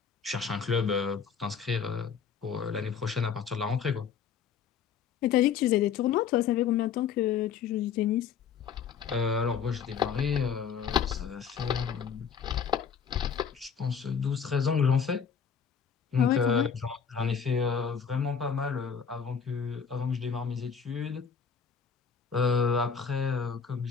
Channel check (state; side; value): quieter; right; 6.9 dB